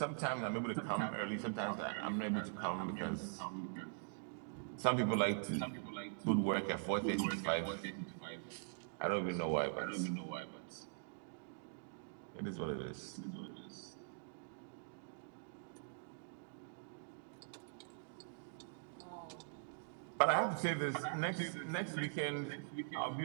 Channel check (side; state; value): left; silent; digital silence